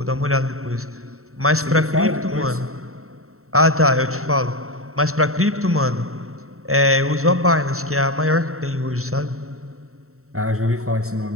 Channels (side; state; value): left; late; 0.63 ms